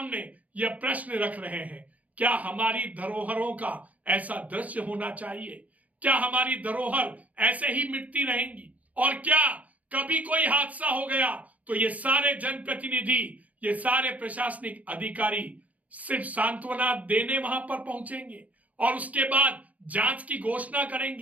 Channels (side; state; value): left; late; 0.072 ms